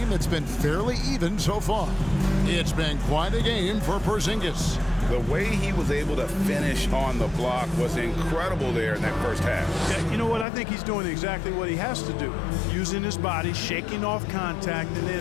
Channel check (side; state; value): right; drops out; at 10.5 s